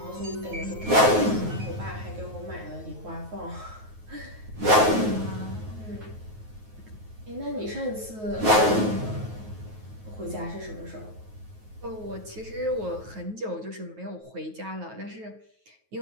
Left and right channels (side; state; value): left; late; 9.4 ms